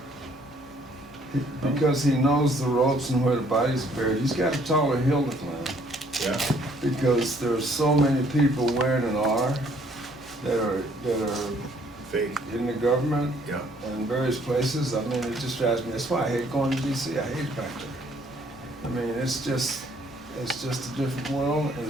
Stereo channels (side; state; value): both; normal; correlation 0.62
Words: because he knows the ropes and where the body's buried, he's got a taller hill to climb. Yeah. Because there's so many people wearing an R that are Fake. in the government Yeah. and various places. I mean, it just drives me. That's why I hate going to DC. I hate it back there. I mean, it's just a different world, and